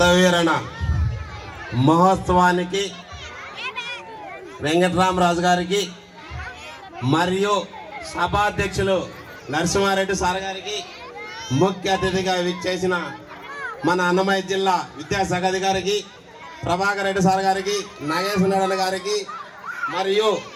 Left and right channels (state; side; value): identical; both; correlation 1.00